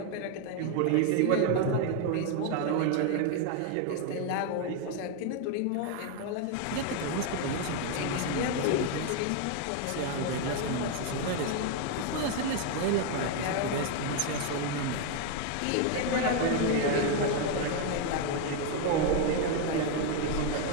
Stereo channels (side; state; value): both; different; correlation 0.01